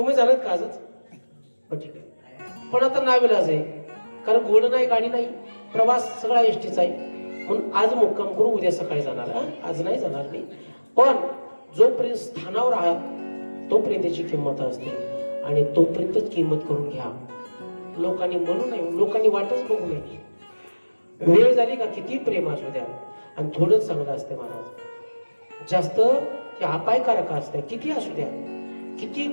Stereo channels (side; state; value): both; inverted; correlation -1.00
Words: जाणार का आजच? ठीक आहे पण आता नाविलाज आहे कारण घोडं नाही गाडी नाही प्रवास सगळा एसटीचा आहे म्हणून आज मुक्काम करू उद्या सकाळी जाणार. आज नाही जाणार मी. पण जोपर्यंत स्थानावर आहात तोपर्यंत त्याची किंमत असते आणि तोपर्यंतच किंमत करून घ्या. लोकांनी म्हणू नये लोकांनी वाटच बघू नये. वेळ झाली का किती प्रेम असू द्या आणि थोडंच चांगलं असते महाराज जास्त ते अपायकारक असते किती असू द्या. किती